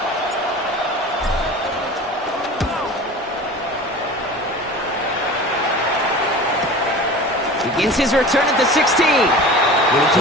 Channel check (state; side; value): normal; both; correlation 0.37